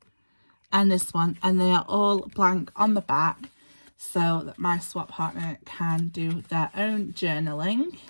and this one, and they are all blank on the back so that my swap partner can do their own journaling.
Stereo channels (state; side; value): inverted; both; correlation -1.00